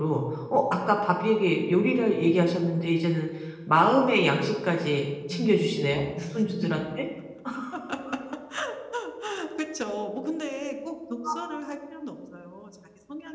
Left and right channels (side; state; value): both; identical; correlation 1.00